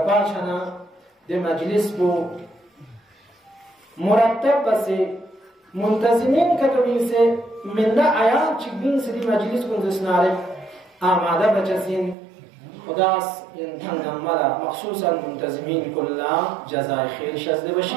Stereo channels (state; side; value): drops out; left; at 12.2 s